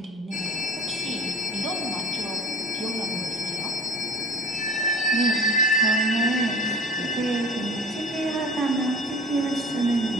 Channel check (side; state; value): both; normal; correlation 0.40